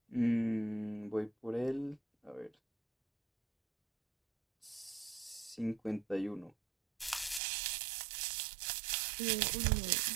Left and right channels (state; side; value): drops out; left; at 7.4 s